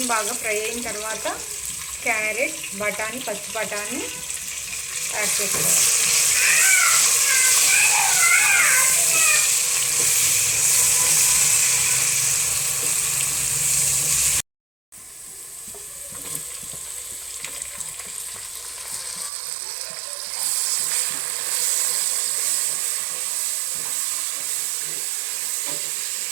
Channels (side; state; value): left; drops out; at 19.3 s